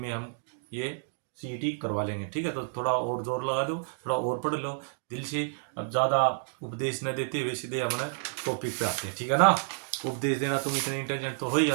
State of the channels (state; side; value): silent; left; digital silence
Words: हम ये सीईटी करवा लेंगे, ठीक है। तो थोड़ा और जोर लगा दो, थोड़ा और पढ़ लो दिल से। अब ज़्यादा उपदेश न देते हुए सीधे हमने टॉपिक पे आते हैं, ठीक है ना। उपदेश देना, तुम इतने इंटेलिजेंट तो हो ही